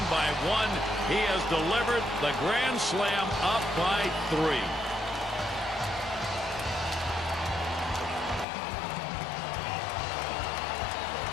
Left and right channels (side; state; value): right; drops out; at 8.5 s